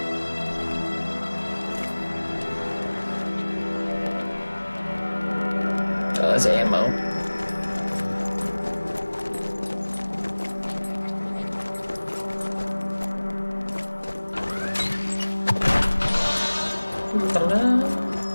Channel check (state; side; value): inverted; both; correlation -1.00